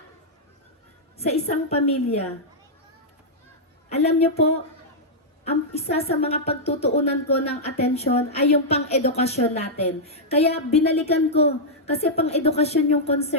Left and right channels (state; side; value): normal; both; correlation -0.07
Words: sa isang pamilya. Alam niyo po, ang isa sa mga pagtutuunan ko ng atensyon ay yung pang-edukasyon natin. Kaya binalikan ko kasi pang-edukasyon yung